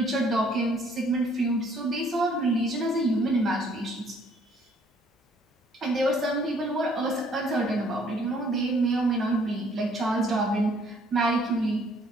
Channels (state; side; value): normal; both; correlation 0.62